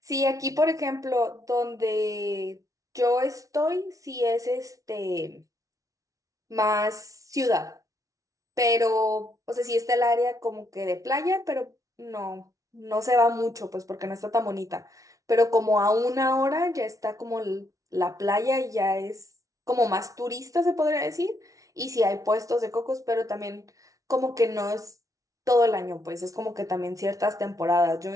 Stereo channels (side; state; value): left; late; 0.17 ms